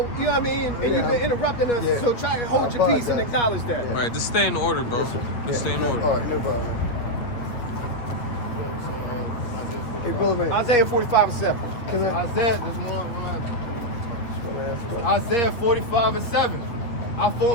you know what I mean? And you've been interrupting us. Yeah. So try to hold your peace and acknowledge that. Right, just stay in order, bro. Just stay in order. All right, no problem. Hey, brother, man. Isaiah 45 and 7. Can I? Isaiah, this one. Isaiah 45 and 7. I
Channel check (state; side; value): late; right; 8.1 ms